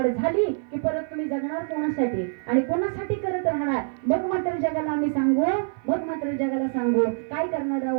झाली की परत तुम्ही जगणार कोणासाठी आणि कोणासाठी करत राहणार. मग मात्र जगाला आम्ही सांगू, काय करणार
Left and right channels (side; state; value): left; silent; 55 dB below the other